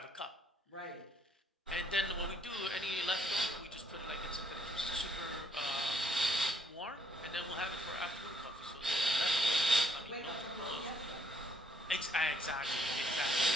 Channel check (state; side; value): normal; both; correlation 0.69